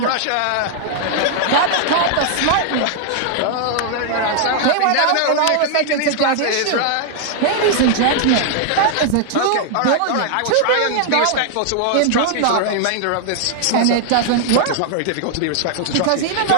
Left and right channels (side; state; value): both; different; correlation 0.00